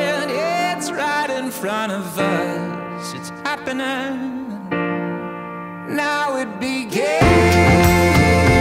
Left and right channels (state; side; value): identical; both; correlation 1.00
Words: it's right in front of us. It's happening. Now it begins,